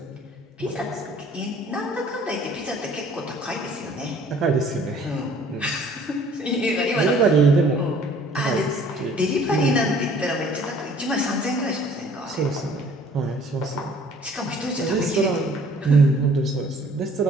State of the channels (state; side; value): normal; both; correlation 0.54